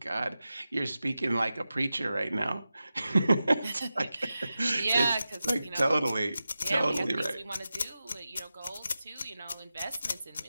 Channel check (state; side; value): inverted; both; correlation -0.93